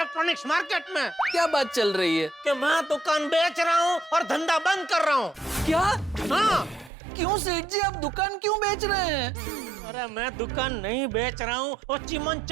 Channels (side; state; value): left; drops out; at 6.9 s